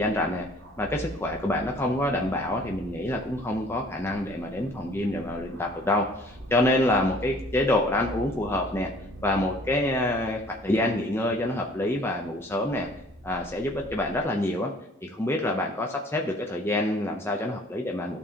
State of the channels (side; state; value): both; normal; correlation 0.53